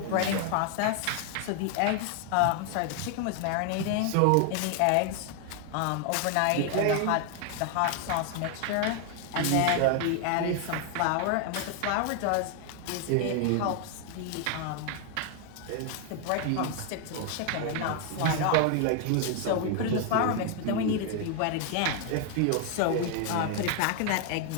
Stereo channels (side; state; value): both; different; correlation 0.00